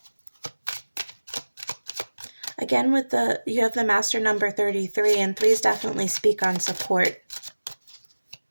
Again, you have the master number 33, and threes definitely speak on support.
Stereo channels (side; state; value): both; inverted; correlation -1.00